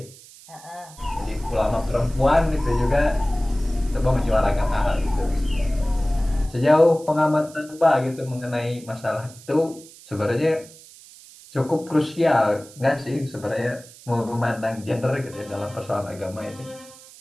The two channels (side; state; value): right; noise; hiss, 21 dB below the sound